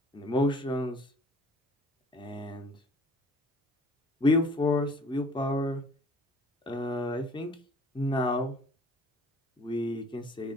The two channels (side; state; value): both; normal; correlation 0.51